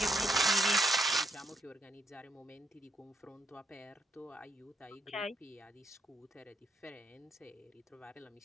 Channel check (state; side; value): normal; both; correlation 0.76